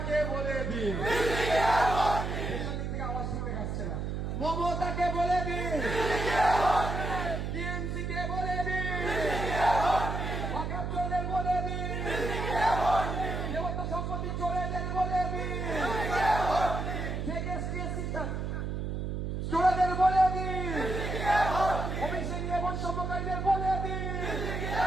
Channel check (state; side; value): noise; right; hum, 3 dB below the sound